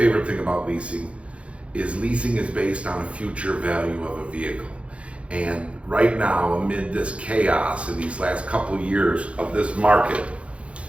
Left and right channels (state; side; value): late; left; 0.061 ms